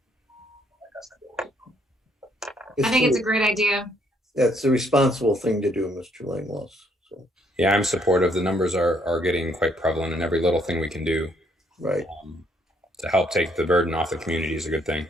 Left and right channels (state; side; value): normal; both; correlation 0.68